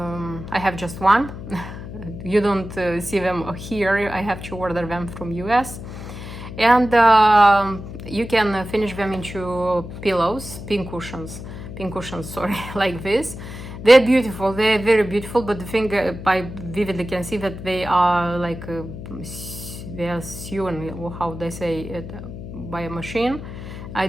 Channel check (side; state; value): left; noise; hum, 11 dB below the sound